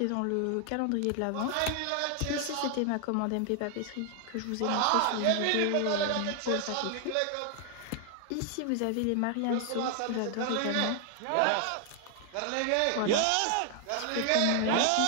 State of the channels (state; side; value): different; both; correlation 0.00